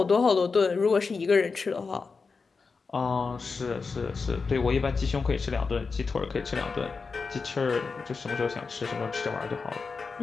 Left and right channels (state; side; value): quieter; right; 4.7 dB